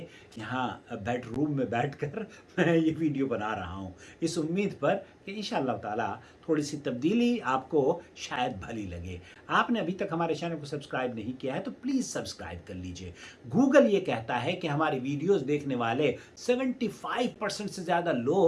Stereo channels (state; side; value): identical; both; correlation 1.00